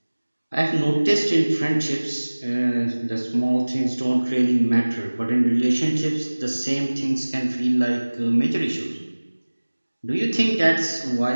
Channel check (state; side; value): inverted; both; correlation -1.00